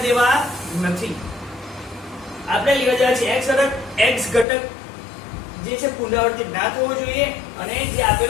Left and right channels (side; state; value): right; drops out; at 4.5 s